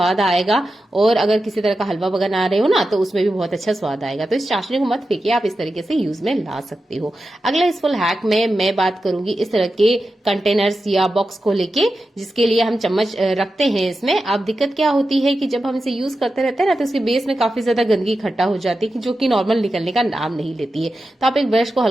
आएगा, और अगर किसी तरह का हलवा बना रहे हो ना तो उसमें भी बहुत अच्छा स्वाद आएगा। तो इस चाशनी को मत फेंकिए, आप इस तरीके से यूज में ला सकते हो। अगला इस फुल हैक में मैं बात करूंगी इस तरह के कंटेनर्स या बॉक्स को लेके, जिसके लिए हम चम्मच रखते हैं इसमें। अब दिक्कत क्या होती है कि जब हम इसे यूज करते रहते हैं ना तो इसके बेस में काफी ज्यादा गंदगी इकट्ठा हो जाती है, जो कि नॉर्मल निकलने का नाम नहीं लेती है। तो आप एक ब्रश को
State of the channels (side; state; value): both; normal; correlation 0.91